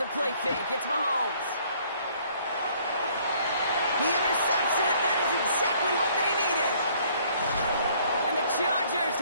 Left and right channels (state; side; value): inverted; both; correlation -0.61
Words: play fake, it's Mahomes. He intercepts it. That is exactly what they needed. And the Chargers